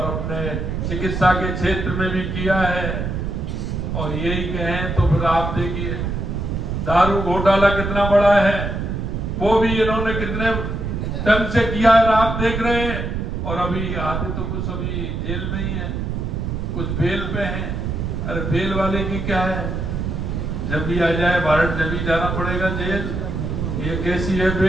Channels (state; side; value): noise; right; rumble, 3 dB below the sound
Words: अपने चिकित्सा के क्षेत्र में भी किया है। और यही कहें तो फिर आप देखिए दारू घोटाला कितना बड़ा है, वो भी इन्होंने कितने ढंग से किया है, आप देख रहे हैं। और अभी आते तो कुछ अभी जेल में ही है, कुछ बेल पे हैं। अरे बेल वाले की क्या है, जब भी आ जाए भारत जब भी जाना पड़ेगा जेल। ये कैसी है